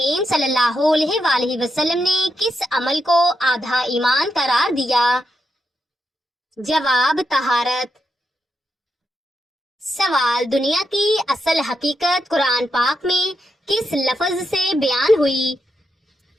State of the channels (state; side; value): normal; both; correlation 0.84